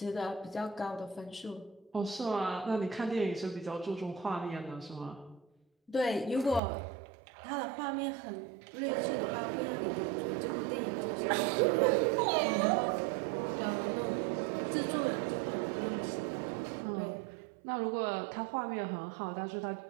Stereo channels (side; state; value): left; drops out; at 6.6 s